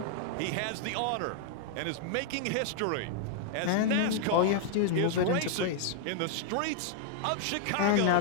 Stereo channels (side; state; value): both; different; correlation -0.01